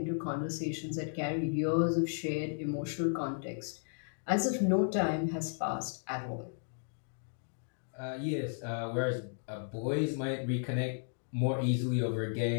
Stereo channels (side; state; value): right; silent; digital silence